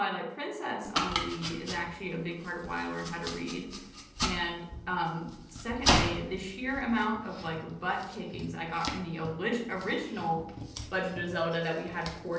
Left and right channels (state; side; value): identical; both; correlation 1.00